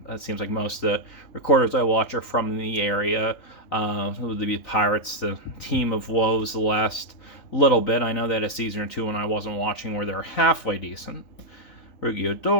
it seems like most of the recorders I watch are from the area. It would be Pirates, the team of woes the last little bit. I know that a season or two when I wasn't watching where they're halfway decent. Rugi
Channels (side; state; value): right; late; 3.9 ms